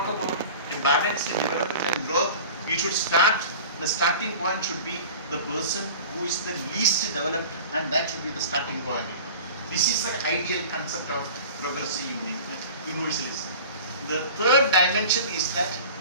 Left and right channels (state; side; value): inverted; both; correlation -0.39